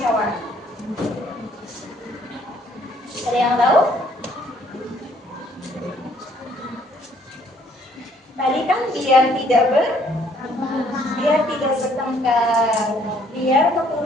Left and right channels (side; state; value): both; normal; correlation 0.64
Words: Ada yang tahu? Tadi kan biar tidak bertengkar, biar